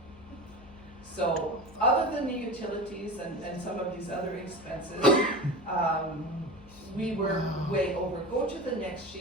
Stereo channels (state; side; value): noise; left; hum, 21 dB below the sound